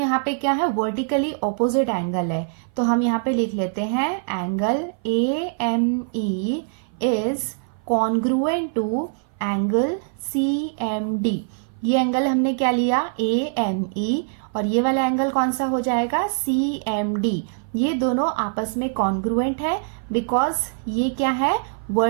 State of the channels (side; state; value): left; silent; 57 dB below the other